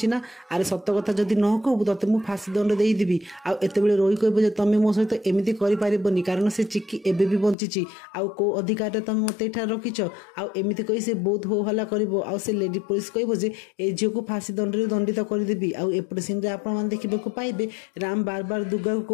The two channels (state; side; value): drops out; right; at 7.6 s